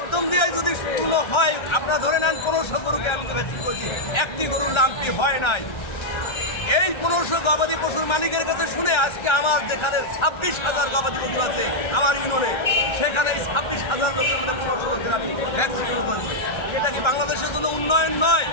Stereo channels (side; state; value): right; late; 1.3 ms